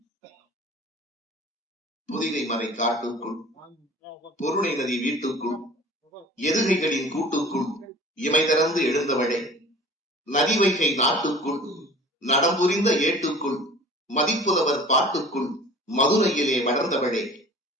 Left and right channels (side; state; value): both; normal; correlation 0.45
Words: புதிகை மறை காட்டுக்குள், பொருணை நதி வீட்டுக்குள், எதுகைகளின் கூட்டுக்குள் இமை திறந்து எழுந்தவளே, நதி வைகை நாட்டுக்குள், நடம்புரிந்த ஏட்டுக்குள், மதிப்புதவர் பாட்டுக்குள், மதுரையிலே வளர்ந்தவளே,